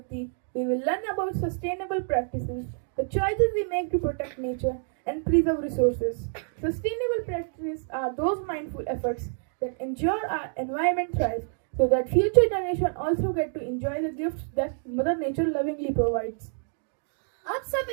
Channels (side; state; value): left; silent; 60 dB below the other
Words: we will learn about sustainable practices, the choices we make to protect nature and preserve resources. Sustainable practices are those mindful efforts that ensure our environment thrives so that future generations also get to enjoy the gifts that Mother Nature lovingly provides. अब